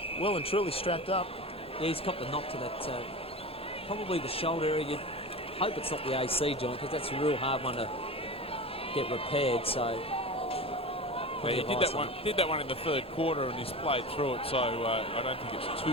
well and truly strapped up. Yeah, he's got the knock to that, probably the shoulder area. You'd hope it's not the AC joint, because that's a real hard one to get repaired, so... Yeah, he did that one in the third quarter and he's played through it, so I don't think it's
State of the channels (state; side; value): normal; both; correlation 0.30